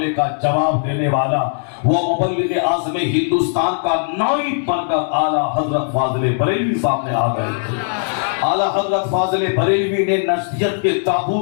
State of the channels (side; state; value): right; silent; digital silence